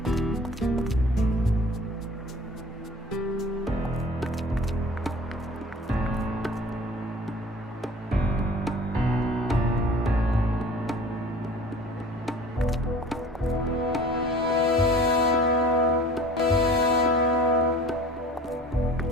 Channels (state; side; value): normal; both; correlation 0.45